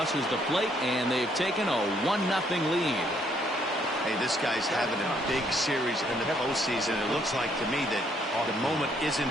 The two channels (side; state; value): both; normal; correlation 0.69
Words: the plate, and they've taken a 1-0 lead. Hey, this guy's having a big series in the postseason. It looks like to me that the moment isn't